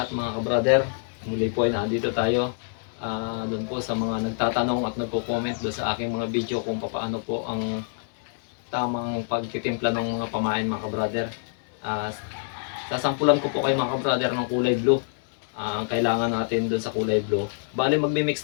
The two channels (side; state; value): right; silent; digital silence